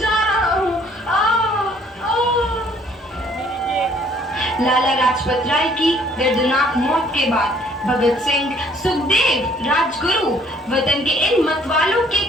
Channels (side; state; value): both; normal; correlation 0.60